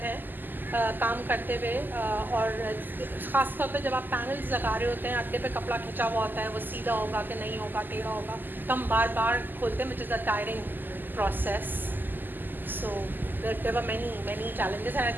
हैं काम करते हुए, और ख़ास तौर पे जब आप पैनल्स लगा रहे होते हैं, अड्डे पे कपड़ा खिंचा हुआ होता है, वो सीधा होगा कि नहीं होगा, टेढ़ा होगा, तो हम बार बार खोलते हैं, which is a tiring process. So there were many challenges, and I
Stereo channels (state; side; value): late; left; 0.089 ms